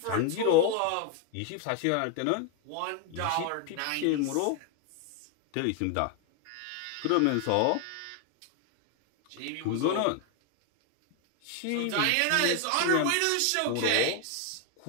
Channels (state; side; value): different; both; correlation 0.01